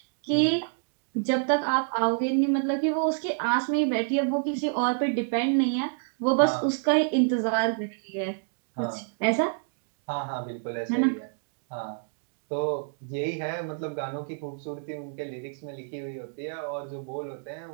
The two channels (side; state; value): left; silent; digital silence